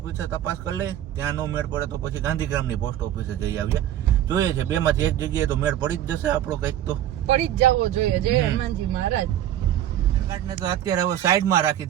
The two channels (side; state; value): left; quieter; 11.7 dB